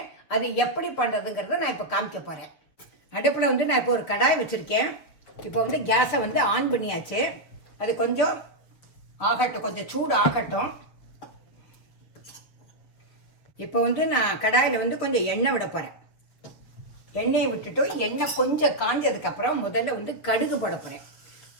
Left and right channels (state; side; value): late; right; 6.9 ms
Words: அது எப்படி பண்ணுறதுங்கிறத நான் இப்போ காமிக்க போகிறேன். அடுப்பில் நான் இப்போ ஒரு கடாய் வச்சுருக்கேன். இப்போ கேஸை ஆன் பண்ணியாச்சு. அது கொஞ்சம் ஆகட்டும், கொஞ்சம் சூடு ஆகட்டும். இப்போ நான் கடாயில் கொஞ்சம் எண்ணெய் விட போகிறேன். எண்ணெயை விட்டுட்டு எண்ணெய் கொஞ்சம் காஞ்சதுக்கப்புறம் முதல்ல கடுகு போட போகிறேன்.